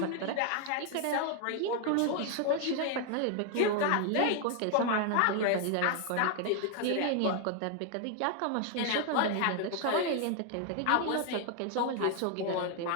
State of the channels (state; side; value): different; both; correlation 0.00